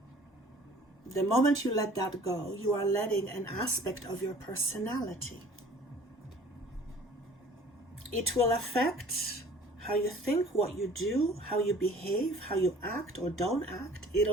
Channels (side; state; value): both; normal; correlation 0.50